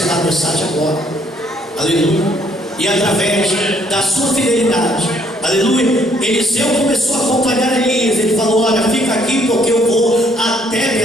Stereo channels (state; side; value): normal; both; correlation 0.66